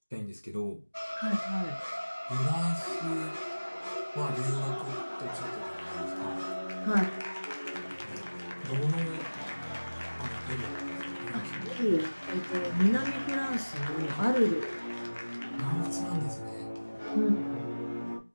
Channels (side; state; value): both; inverted; correlation -1.00